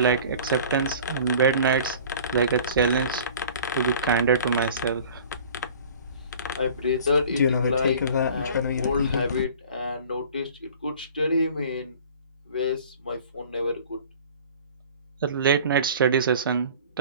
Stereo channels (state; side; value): inverted; both; correlation -0.45